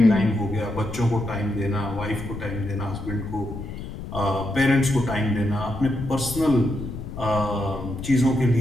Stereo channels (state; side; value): noise; left; rumble, 9 dB below the sound